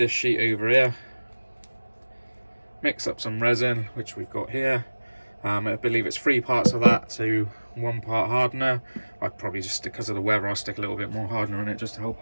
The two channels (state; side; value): inverted; both; correlation -1.00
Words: sheet over here, mix up some resin, which we've got here. I believe it's 3 parts of that to 1 part hardener. I'd probably just, because of the weather, I'll stick a little bit more hardener in it just to help